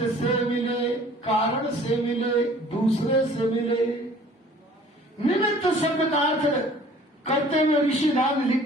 से मिले, कारण से मिले, दूसरे से मिले। निमित्त शब्द का अर्थ करते हुए ऋषिदान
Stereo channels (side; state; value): both; normal; correlation 0.51